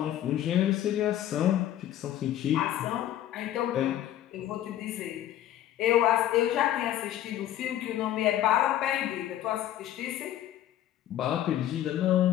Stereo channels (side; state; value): right; quieter; 12.4 dB